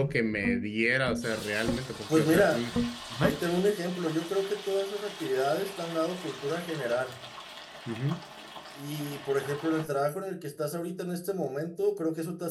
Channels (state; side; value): identical; both; correlation 1.00